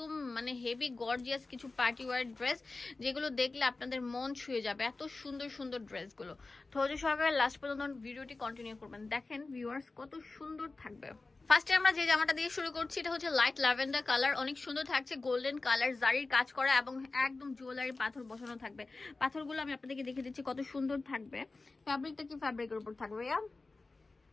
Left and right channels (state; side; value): quieter; right; 3.5 dB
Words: মানে হেভি গর্জিয়াস কিছু পার্টি ওয়্যার ড্রেস, যেগুলো দেখলে আপনাদের মন ছুঁয়ে যাবে। এত সুন্দর সুন্দর ড্রেসগুলো। ধৈর্য সহকারে লাস্ট পর্যন্ত ভিডিওটি কন্টিনিউ করবেন। দেখেন ভিউয়ার্স কত সুন্দর থাকবে। ফার্স্টে আমরা যে জামাটা দিয়ে শুরু করছি, এটা হচ্ছে লাইট ল্যাভেন্ডার কালার। অনেক সুন্দর থাকছে, গোল্ডেন কালার, জারির কাজ করা এবং একদম জুয়েলারি পাথর বসানো থাকবে। পাথরগুলো আমি আপনাদেরকে দেখে দিচ্ছি কত সুন্দর থাকবে। ফ্যাব্রিকটা কি ফ্যাব্রিকের উপর থাকবে?